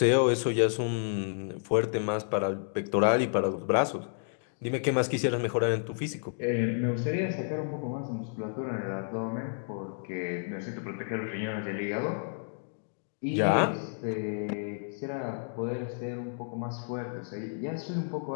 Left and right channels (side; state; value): right; silent; digital silence